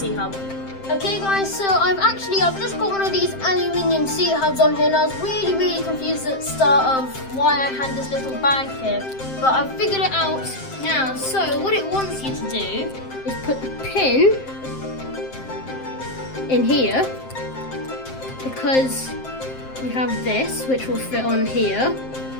Okay guys, so I've just got one of these aluminium C-hubs on here, and I was really confused at the start of why I had this little bag here, but I've figured it out now. So what it wants you to do is put the pin in here, because we have this which will fit on here,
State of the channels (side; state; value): right; late; 7.6 ms